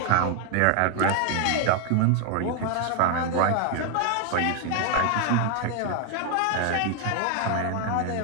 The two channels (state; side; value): different; both; correlation 0.00